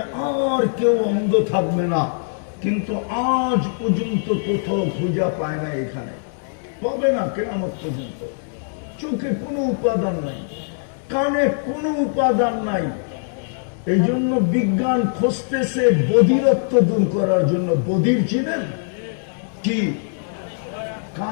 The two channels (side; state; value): right; silent; digital silence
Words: আর কেউ অন্ধ থাকবে না। কিন্তু আজ পর্যন্ত কোথাও খুঁজা পায় না, এখানে পাবে না কিয়ামত পর্যন্ত। চোখে কোনো উপাদান নাই, কানে কোনো উপাদান নাই। এই জন্য বিজ্ঞান খুঁজতেছে বধিরত্ব দূর করার জন্য। বধির চিনেন কি?